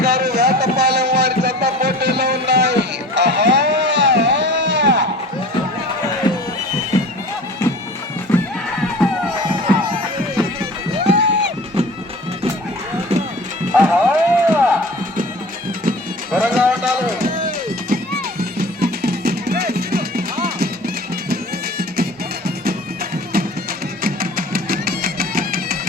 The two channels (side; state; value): both; normal; correlation 0.41